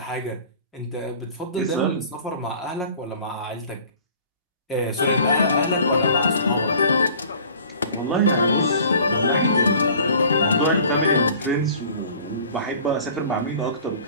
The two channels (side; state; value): both; inverted; correlation -0.47